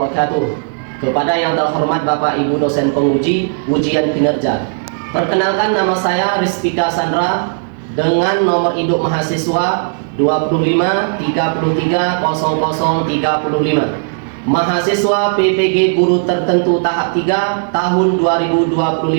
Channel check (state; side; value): silent; left; 60 dB below the other